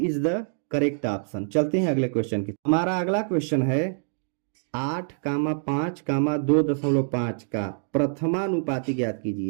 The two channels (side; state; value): left; silent; digital silence